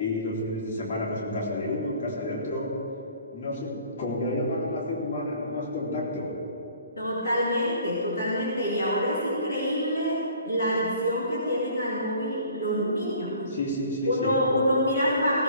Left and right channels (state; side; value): inverted; both; correlation -0.51